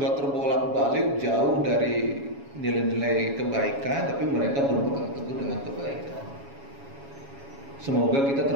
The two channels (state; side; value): late; left; 7.2 ms